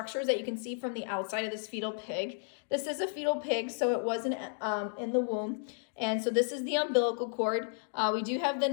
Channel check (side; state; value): right; silent; digital silence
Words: that you can see from the outside of this fetal pig. This is a fetal pig, so it wasn't in the womb. And so this is the umbilical cord. We do have the